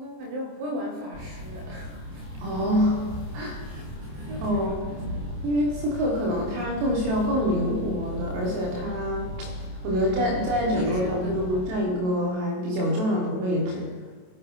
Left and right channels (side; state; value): left; late; 27 ms